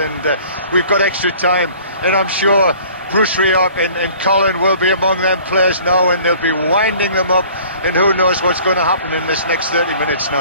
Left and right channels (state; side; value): inverted; both; correlation -0.50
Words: we've got extra time, and I'm sure Bruce Rioch and Colin will be among them players now, and they'll be winding them up, and who knows what's going to happen in this next 30 minutes